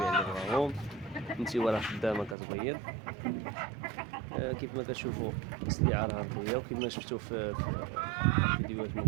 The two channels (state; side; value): drops out; left; at 2.4 s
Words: اللي بغاهم. النتيوة راه خدامة كتبيض. كيف ما كتشوفوا السليعة راه نقية، وكما شفتوا في الفيديوهات